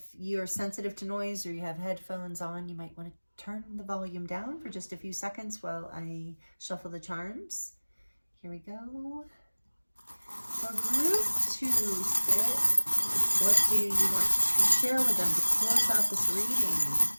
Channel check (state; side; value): inverted; both; correlation -1.00